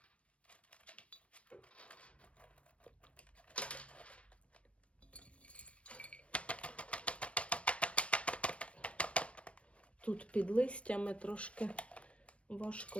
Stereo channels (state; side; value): late; right; 0.062 ms